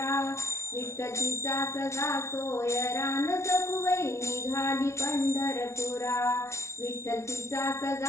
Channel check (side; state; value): right; late; 0.13 ms